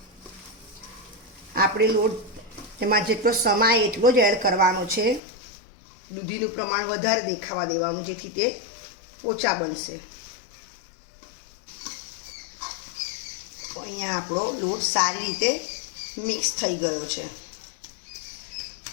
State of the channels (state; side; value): drops out; right; at 5.2 s